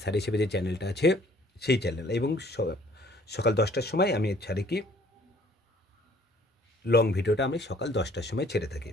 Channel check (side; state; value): both; normal; correlation 0.57